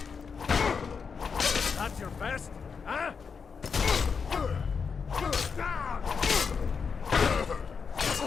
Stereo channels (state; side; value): quieter; right; 5.8 dB